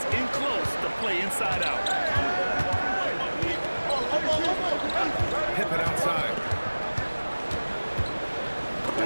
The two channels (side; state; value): both; inverted; correlation -1.00